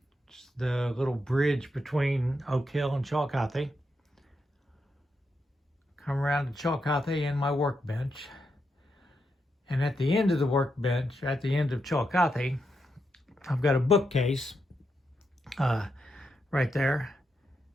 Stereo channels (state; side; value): normal; both; correlation 0.84